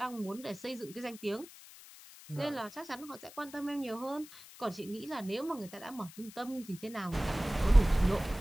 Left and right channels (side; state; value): left; noise; hiss, 18 dB below the sound